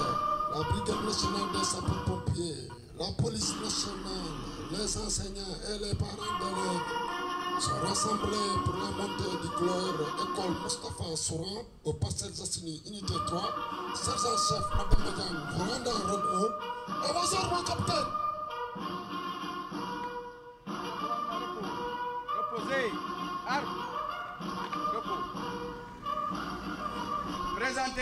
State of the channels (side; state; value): both; identical; correlation 1.00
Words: la brigade nationale des sapeurs-pompiers, la police nationale, les enseignants et les parents d'élèves sont rassemblés pour la montée du gloire école Moustapha Souran au Parcelles Assainies unité 3. Sergent-chef Madame Madiane, vous rendez en rôle 1. Avancez, mon capitaine. Reposez. Armes. Repos.